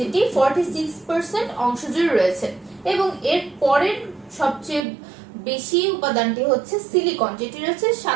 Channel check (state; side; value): drops out; left; at 4.9 s